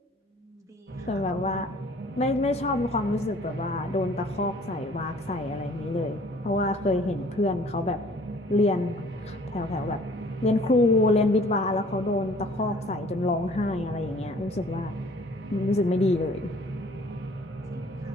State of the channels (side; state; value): both; normal; correlation 0.54